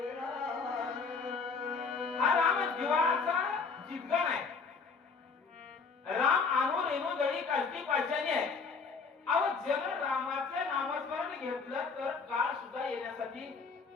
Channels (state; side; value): quieter; right; 4.9 dB